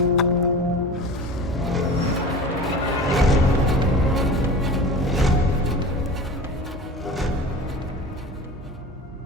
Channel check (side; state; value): both; normal; correlation 0.35